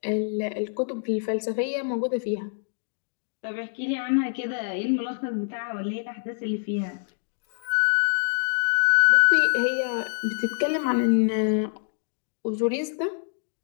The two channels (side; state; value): right; silent; digital silence